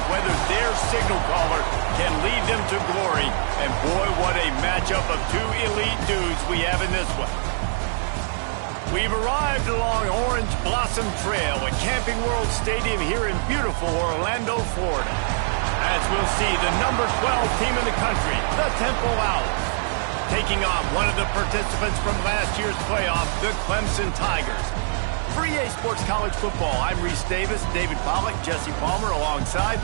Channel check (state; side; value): silent; left; digital silence